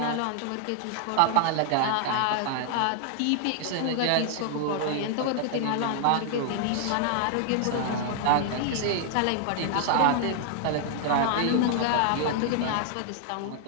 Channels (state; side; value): different; both; correlation 0.00